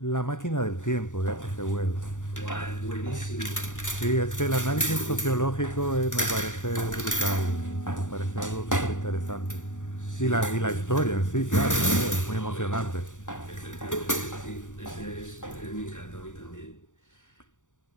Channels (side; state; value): right; late; 0.86 ms